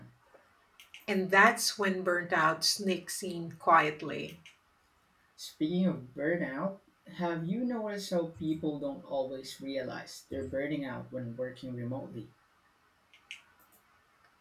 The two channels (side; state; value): both; identical; correlation 1.00